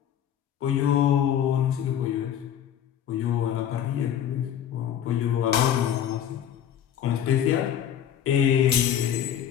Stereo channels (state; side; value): quieter; right; 9.8 dB